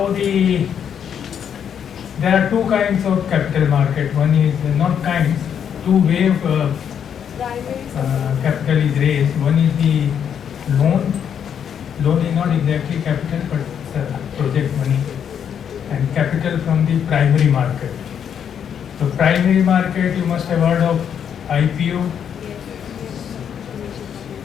there are two kinds of capital market. One is not kinds, two way of capital is raised. One is the loan. Loan is not exactly capital, but it's project money, and capital from the primary market. So primary market, you must have heard of IPO,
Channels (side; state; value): right; quieter; 8.3 dB